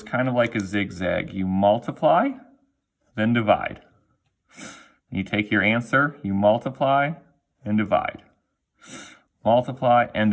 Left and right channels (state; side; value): identical; both; correlation 1.00